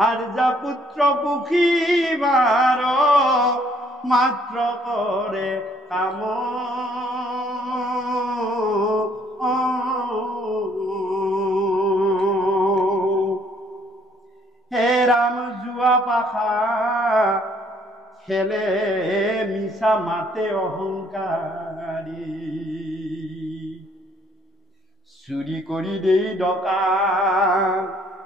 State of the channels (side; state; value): both; normal; correlation 0.64